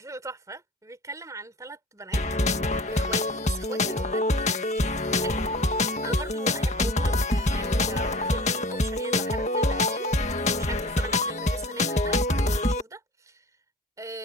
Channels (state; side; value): normal; both; correlation 0.43